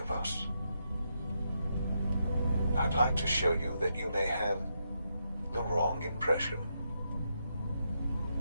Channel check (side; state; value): both; inverted; correlation -0.82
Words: of us. I'd like to show you that you may have the wrong impression.